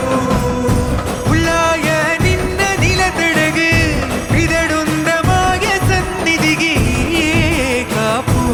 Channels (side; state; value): both; identical; correlation 1.00